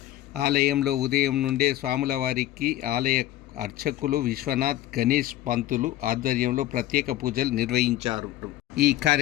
ఆలయంలో ఉదయం నుండే స్వాముల వారికి ఆలయ అర్చకులు విశ్వనాథ్, గణేష్ పంతులు ఆధ్వర్యంలో ప్రత్యేక పూజలు నిర్వహించారు. ఈ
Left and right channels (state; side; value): quieter; right; 14.5 dB